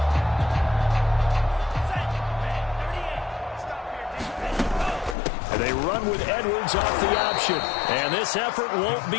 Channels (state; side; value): drops out; right; at 5.2 s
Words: They run with Edwards off the option. And this effort won't